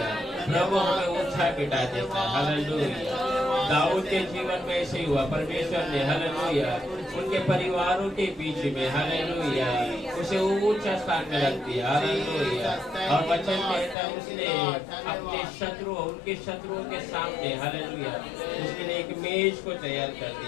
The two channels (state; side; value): drops out; right; at 14.0 s